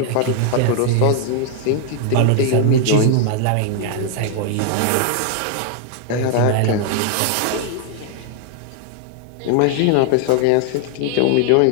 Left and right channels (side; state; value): both; different; correlation 0.00